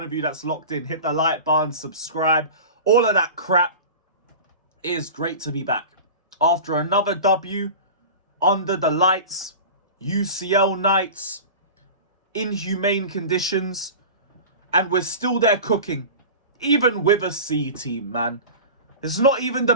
of you that's locked in. Hit the like button, subscribe, all of that crap. It is great to be back. After another W, under the lights, UCL nights, inhumane conditions, and we're still there cooking. Even with a C team, man. It's not even the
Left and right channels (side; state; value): both; inverted; correlation -0.33